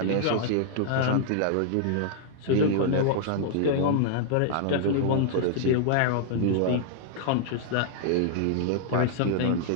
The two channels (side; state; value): both; different; correlation -0.01